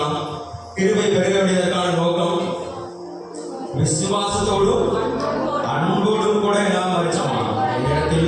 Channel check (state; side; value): identical; both; correlation 1.00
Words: கிருபை பெருக வேண்டியதற்கான நோக்கம் விசுவாசத்தோடும் அன்போடும் கூட என்ன மறிச்சோமா?